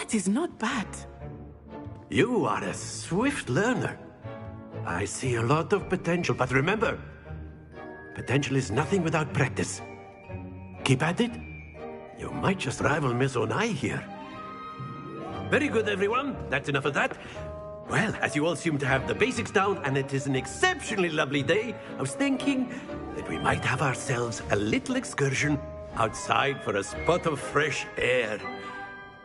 is not bad. You are a swift learner. I see a lot of potential, but remember, potential is nothing without practice. Keep at it. You might just rival Miss Onai here. Very good, everyone. That's enough of that. Well, as you all seem to have the basics down, and it is an exceptionally lovely day, I was thinking that we might have ourselves a little excursion outside for a spot of fresh air.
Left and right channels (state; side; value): identical; both; correlation 1.00